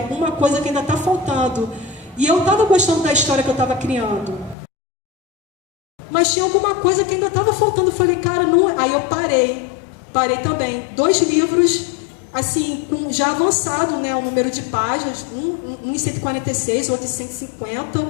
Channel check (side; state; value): right; drops out; at 4.5 s